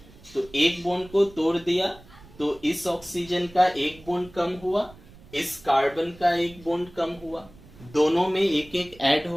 तो एक बॉन्ड को तोड़ दिया तो इस ऑक्सीजन का एक बॉन्ड कम हुआ, इस कार्बन का एक बॉन्ड कम हुआ, दोनों में एक एक ऐड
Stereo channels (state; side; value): noise; right; rumble, 22 dB below the sound